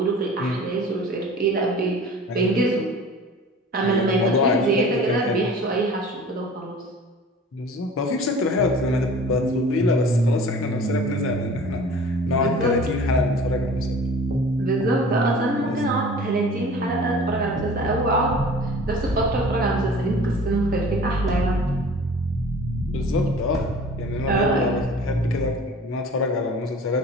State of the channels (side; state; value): both; normal; correlation 0.44